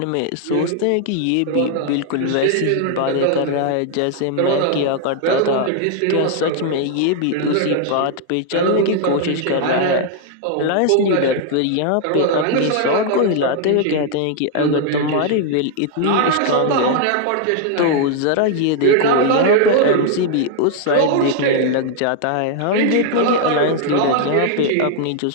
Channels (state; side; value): different; both; correlation 0.00